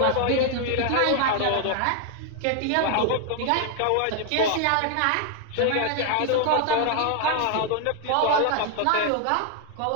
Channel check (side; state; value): both; different; correlation 0.00